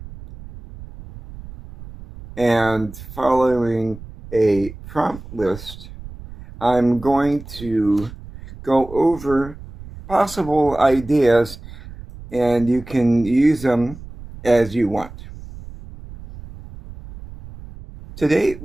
and following a prompt list, I'm going to go over possible ideas and you can use them as you want. Today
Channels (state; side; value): noise; right; rumble, 15 dB below the sound